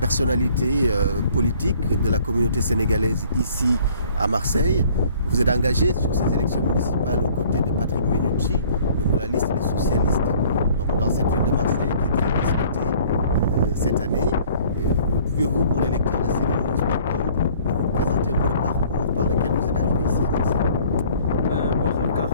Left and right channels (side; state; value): both; inverted; correlation -0.55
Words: politiques de la communauté sénégalaise ici à Marseille. Vous êtes engagé sur ces élections municipales aux côtés de Patrick Mennucci, de la liste des socialistes, donc dans cette ville de Marseille qui est très disputée cette année. Pouvez-vous, pour les lecteurs de CNews.com, vous présenter un peu le parcours par lequel vous êtes arrivé ici à Marseille? Bonjour